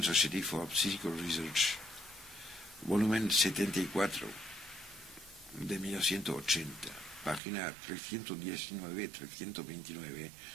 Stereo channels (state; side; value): drops out; left; at 7.4 s